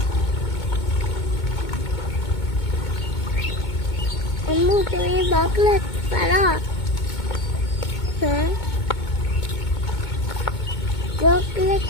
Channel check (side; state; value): right; late; 2.2 ms